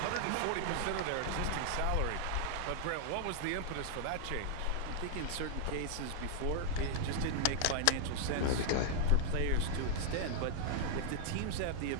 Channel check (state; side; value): different; both; correlation 0.00